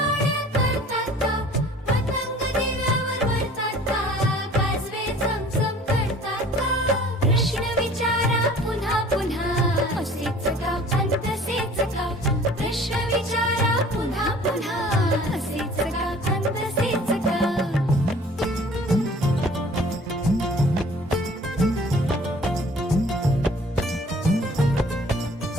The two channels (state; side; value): normal; both; correlation 0.50